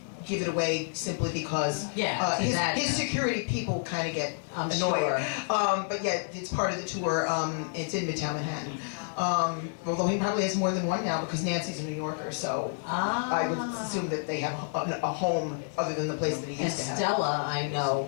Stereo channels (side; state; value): right; silent; digital silence